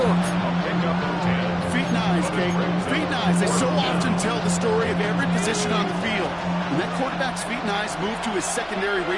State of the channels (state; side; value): identical; both; correlation 1.00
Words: Feet and eyes, Kate. Feet and eyes. They so often tell the story of every position on the field. When that quarterback's feet and eyes move to his secondary